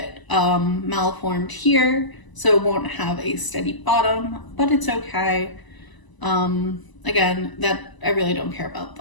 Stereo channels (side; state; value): right; late; 1.0 ms